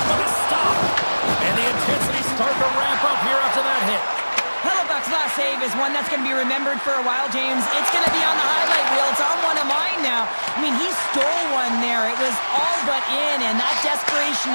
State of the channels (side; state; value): both; inverted; correlation -1.00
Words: with a stop. And the intensity starting to ramp up here after that hit. Hellebuck's last save is one that's going to be remembered for a while, James. It's going to be on the highlight reel. It's on one of mine now. I mean, he stole one there. It was all but in, and that